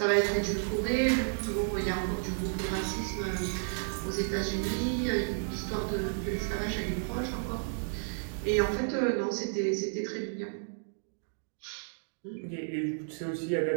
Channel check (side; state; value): left; silent; digital silence